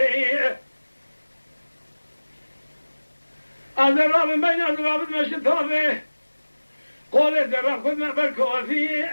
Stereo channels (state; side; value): inverted; both; correlation -1.00